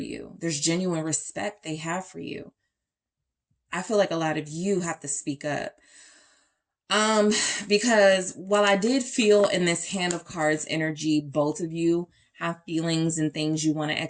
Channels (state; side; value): identical; both; correlation 1.00